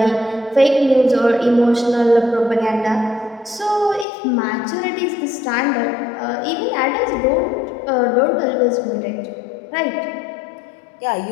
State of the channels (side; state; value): right; drops out; at 4.0 s